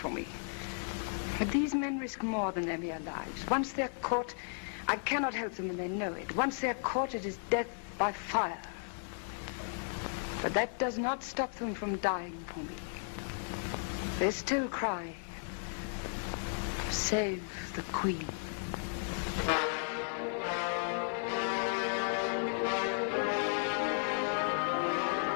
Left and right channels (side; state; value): right; silent; 54 dB below the other